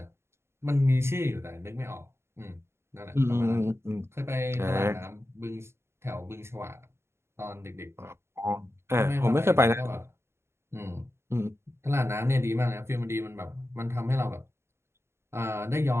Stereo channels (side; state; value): left; late; 0.12 ms